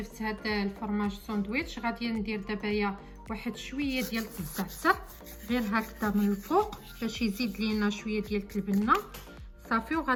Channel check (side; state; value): both; identical; correlation 1.00